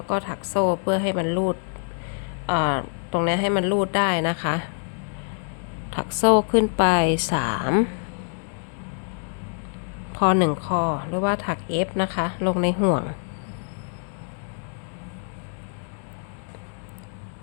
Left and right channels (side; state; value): right; silent; 57 dB below the other